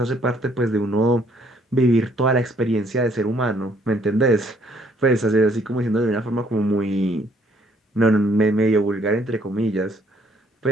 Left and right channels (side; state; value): both; normal; correlation 0.65